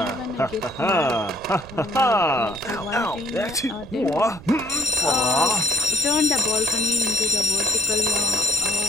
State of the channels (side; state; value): right; noise; rumble, 17 dB below the sound